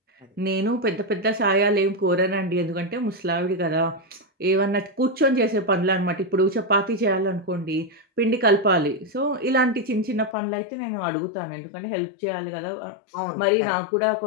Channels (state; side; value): drops out; right; at 10.4 s